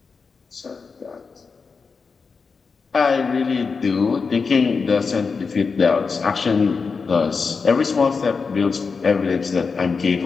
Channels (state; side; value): quieter; right; 5.0 dB